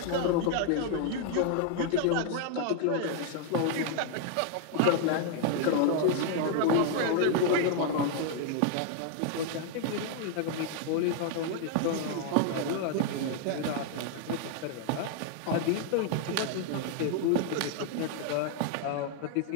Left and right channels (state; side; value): different; both; correlation 0.00